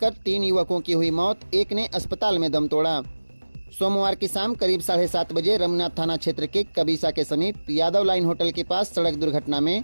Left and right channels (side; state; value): both; inverted; correlation -1.00